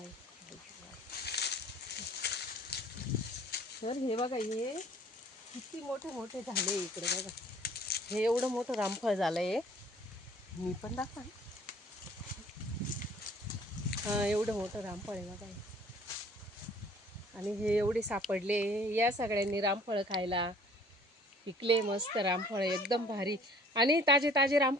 तर हे बघा, हे किती मोठे मोठे झाले इकडे बघा. हे एवढं मोठं रामफळ झालंय. मी पण दाखवा. हा, एवढं मोठं रामफळ आहे बघा. आणि हे एवढे सापडले. या सगळ्यांनी रामफळ खायला. पिकले मस्त रामफळ, एकदम भारी. आणि ताजे ताजे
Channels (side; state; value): both; normal; correlation 0.54